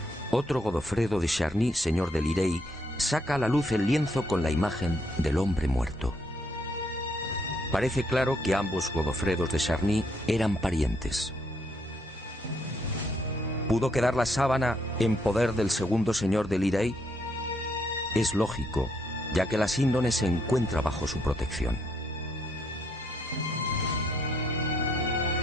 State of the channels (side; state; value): both; normal; correlation 0.72